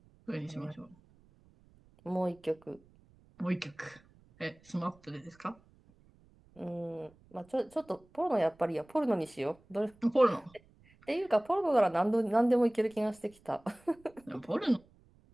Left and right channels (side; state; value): right; noise; rumble, 29 dB below the sound